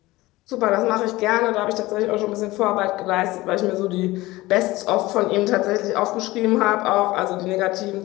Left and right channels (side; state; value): right; quieter; 19.1 dB